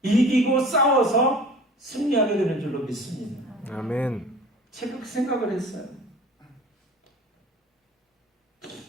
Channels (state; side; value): normal; both; correlation 0.44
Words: 이기고 싸워서 승리하게 되는 줄로 믿습니다. 아멘. 제가 그 생각을 했어요.